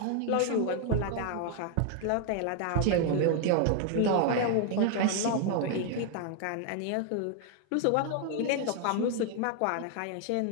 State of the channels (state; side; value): different; both; correlation 0.00